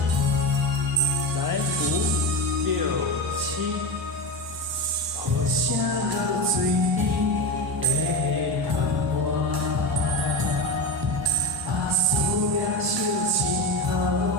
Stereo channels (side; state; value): both; normal; correlation 0.21